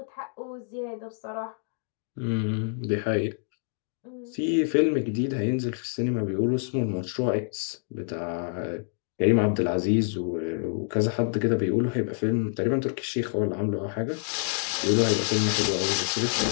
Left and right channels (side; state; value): right; silent; 60 dB below the other